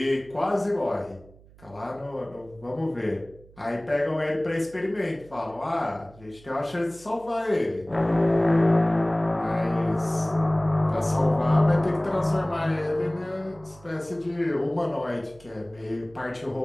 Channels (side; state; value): right; noise; hum, 24 dB below the sound